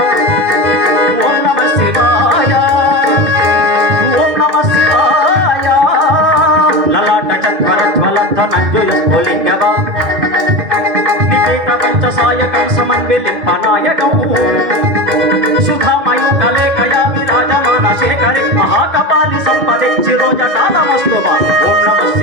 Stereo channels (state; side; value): late; left; 2.5 ms